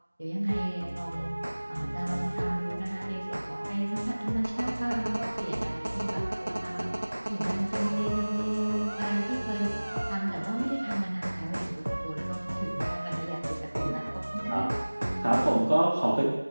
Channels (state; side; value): inverted; both; correlation -1.00